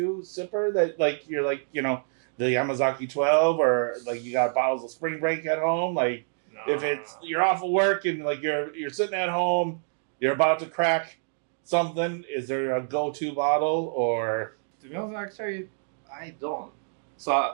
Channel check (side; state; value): left; silent; digital silence